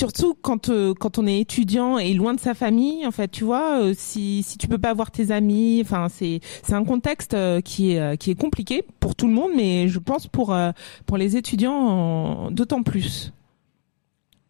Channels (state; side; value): silent; right; digital silence